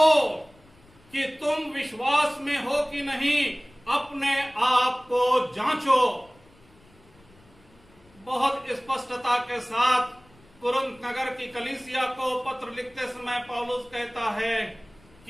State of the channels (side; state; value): left; noise; rumble, 28 dB below the sound